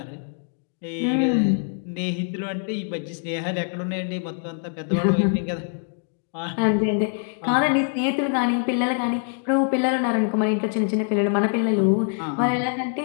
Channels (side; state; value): right; silent; 55 dB below the other